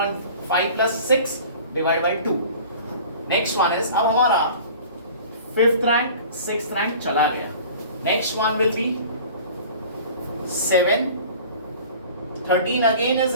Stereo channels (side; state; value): both; inverted; correlation -0.43